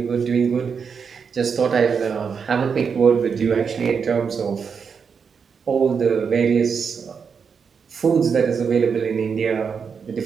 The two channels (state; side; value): quieter; left; 6.2 dB